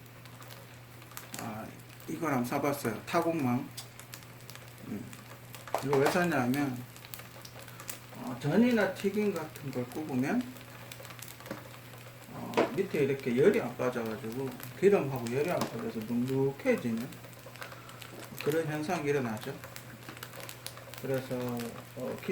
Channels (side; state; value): both; identical; correlation 1.00